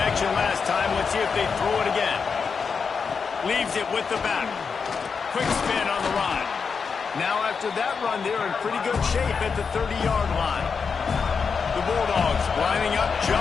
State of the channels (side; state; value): right; quieter; 5.6 dB